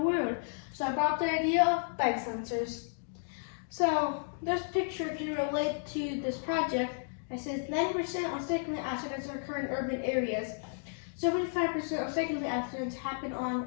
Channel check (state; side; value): silent; right; digital silence